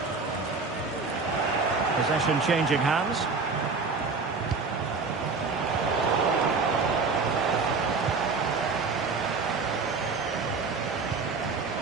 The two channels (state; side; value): quieter; left; 4.5 dB